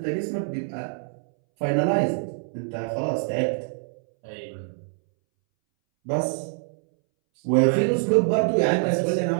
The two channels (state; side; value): silent; left; 62 dB below the other